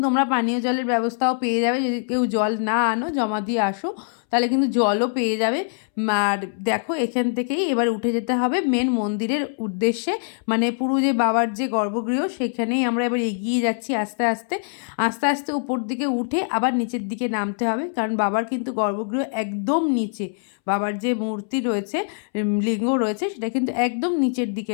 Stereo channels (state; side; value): silent; right; 63 dB below the other